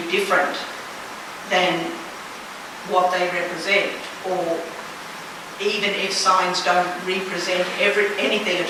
different than what they represent, or even if signs don't represent anything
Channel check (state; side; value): identical; both; correlation 1.00